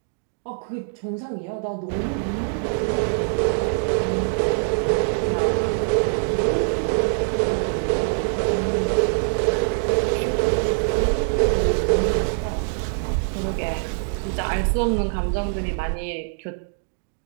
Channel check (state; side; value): silent; left; 61 dB below the other